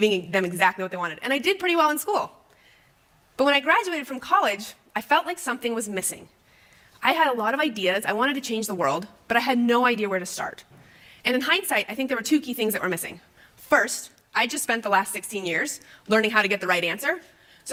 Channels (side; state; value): both; identical; correlation 1.00